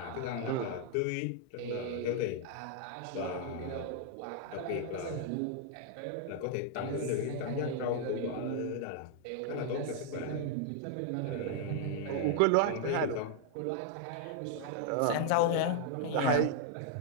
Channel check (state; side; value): different; both; correlation -0.01